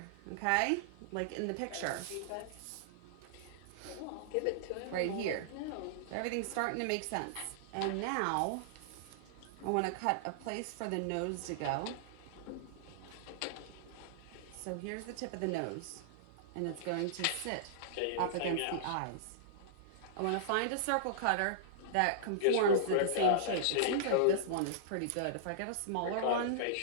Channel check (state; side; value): different; both; correlation -0.02